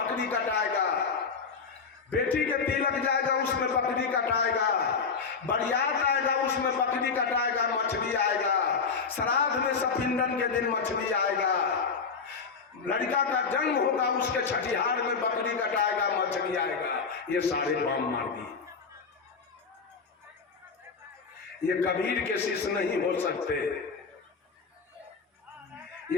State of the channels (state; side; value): quieter; right; 5.2 dB